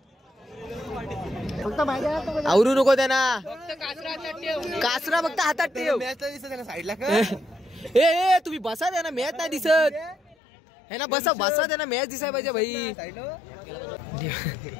आवरू नको त्यांना. कासरा फक्त हातात ठेव. साईडला ए तुम्ही बसा द्या ना मॅच नाही दिसत है ना. बसा द्या ना मॅच दिसाय पाहिजे भाई.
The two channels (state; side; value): drops out; right; at 10.4 s